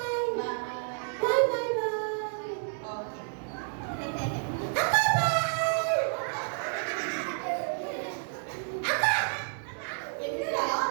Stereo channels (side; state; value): left; silent; digital silence